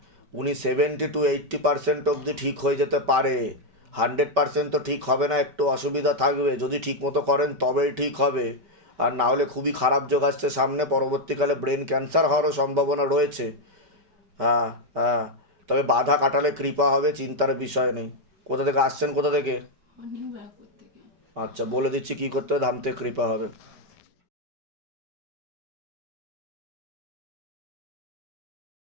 উনি 70 to 80% অবধি ঠিক হয়ে যেতে পারে। 100% তো ঠিক হবে না, একটু অসুবিধা থাকবে। যদি ঠিক মতো করেন তবেই ঠিক হবে, আর না হলে খুবই খারাপ যোগ আসছে সামনে, পরবর্তীকালে ব্রেন ক্যান্সার হওয়ারও সম্ভাবনা রয়েছে। হ্যাঁ হ্যাঁ, তবে বাধা কাটালে কৃপা হবে, চিন্তার বিষয় নেই। কোথা থেকে আসছেন, কোথা থেকে? নিউ ব্যারাকপুর থেকে। আচ্ছা, বলে দিচ্ছি কী করতে হবে, ধামতে কৃপা হবে।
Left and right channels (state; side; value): late; left; 5.2 ms